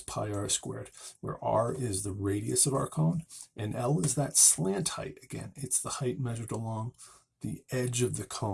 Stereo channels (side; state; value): both; identical; correlation 1.00